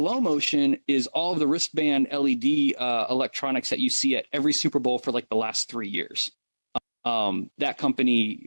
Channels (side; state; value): both; inverted; correlation -1.00